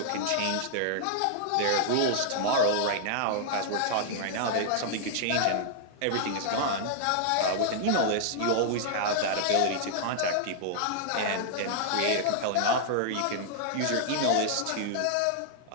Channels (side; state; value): both; different; correlation -0.01